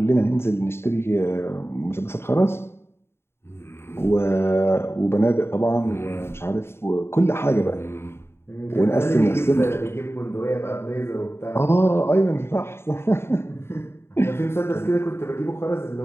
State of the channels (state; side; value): late; right; 0.12 ms